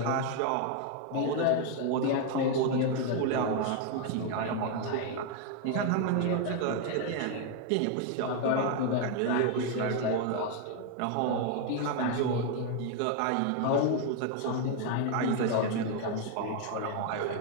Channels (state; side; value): different; both; correlation 0.01